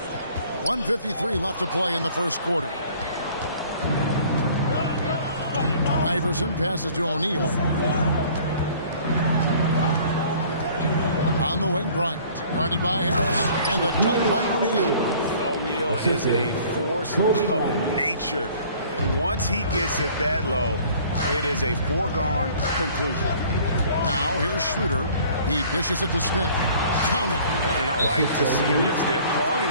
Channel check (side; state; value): both; inverted; correlation -0.52